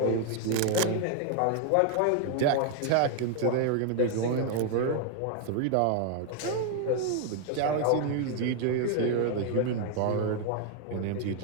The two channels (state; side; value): different; both; correlation 0.00